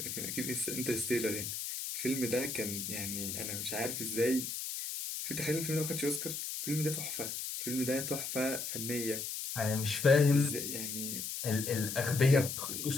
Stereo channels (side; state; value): left; noise; hiss, 4 dB below the sound